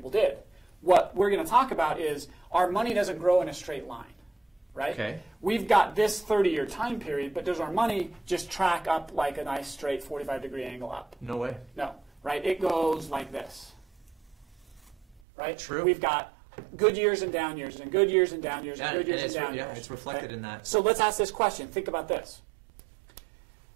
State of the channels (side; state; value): left; drops out; at 15.2 s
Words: did. What we're going to talk about is our money doesn't grow in a straight line, right? Okay. We've got this 30-year time period, but does our money just track up like a nice straight 45-degree angle up? No way. No, right? It goes like this, right? True. We've got good years and down years, and good years and down years, and good years and down years. Yeah, it's reflected in that. So let's ask this question. Think about this.